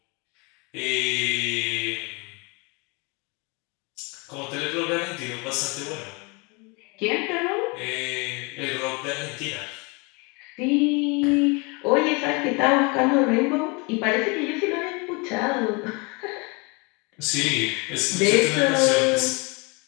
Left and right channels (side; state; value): right; quieter; 29.5 dB